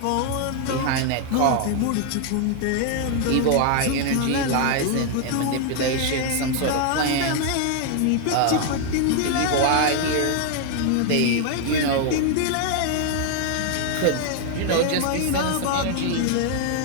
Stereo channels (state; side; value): different; both; correlation 0.00